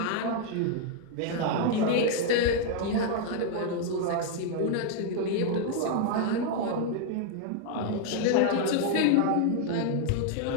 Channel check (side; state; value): both; different; correlation 0.00